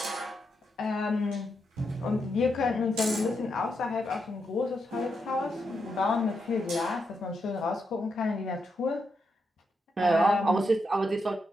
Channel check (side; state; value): both; normal; correlation 0.83